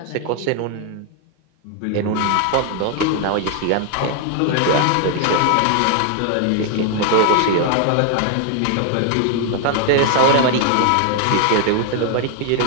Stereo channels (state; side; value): different; both; correlation 0.00